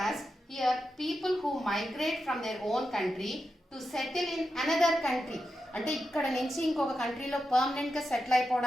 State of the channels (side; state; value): both; normal; correlation 0.88